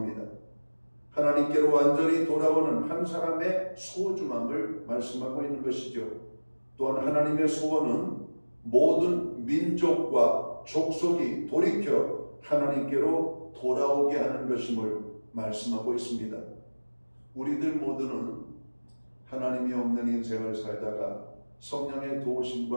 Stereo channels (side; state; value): both; inverted; correlation -1.00